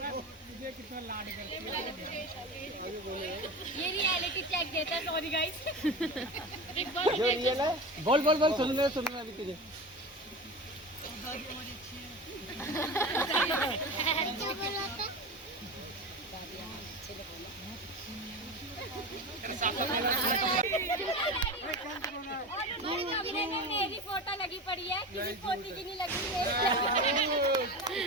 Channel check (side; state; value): both; normal; correlation 0.28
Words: कितना लाड करती है, ये रियलिटी चेक देता है। सॉरी गाइस, जो रियल है, बोल बोल बोल, सुन ले अभी तुझे। दादी हमारी अच्छी है। मेरी फोटो लगी पड़ी है, किसी पोती की नहीं लगी है।